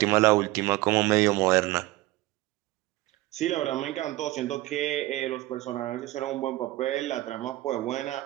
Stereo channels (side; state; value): left; quieter; 18.0 dB